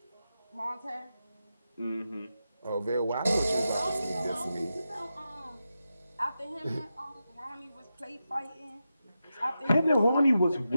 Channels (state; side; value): inverted; both; correlation -0.89